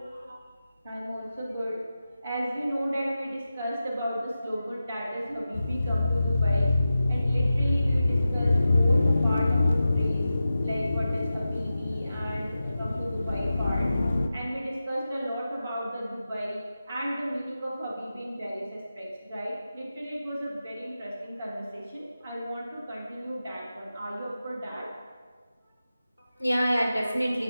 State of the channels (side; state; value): both; inverted; correlation -0.93